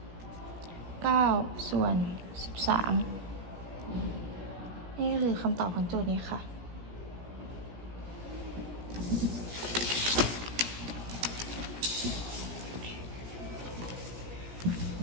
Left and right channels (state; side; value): late; left; 17 ms